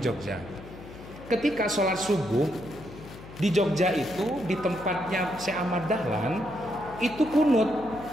Ketika sholat subuh di Jogja itu di tempatnya Syekh Ahmad Dahlan itu kunut.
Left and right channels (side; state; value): left; noise; hum, 16 dB below the sound